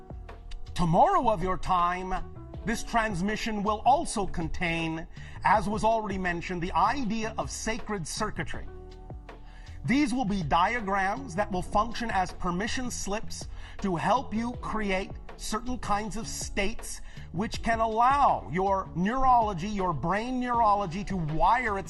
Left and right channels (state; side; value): identical; both; correlation 1.00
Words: tomorrow of your time, this transmission will also contain, as was already mentioned, the idea of sacred circuitry. These will be diagrams that will function as permission slips to help you create certain kinds of states which can allow your neurology, your brain neurology, to wire